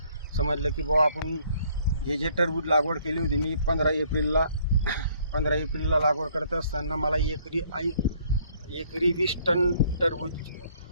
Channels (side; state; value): both; inverted; correlation -0.63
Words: समजलं की बुवा आपण जे टरबूज लागवड केली होती मी 15 एप्रिलला लागवड करत असताना मला एकरी 20 टन टरबूज